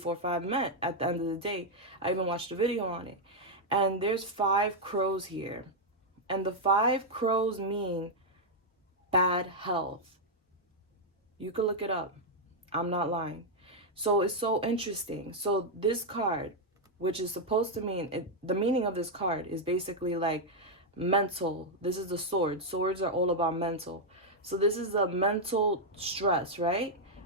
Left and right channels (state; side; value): normal; both; correlation -0.01